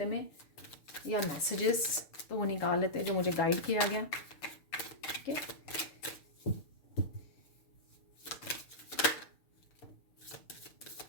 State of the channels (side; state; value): right; late; 6.6 ms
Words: में, या मैसेजेस, तो वो निकाल लेते हैं जो मुझे गाइड किया गया। ठीक है,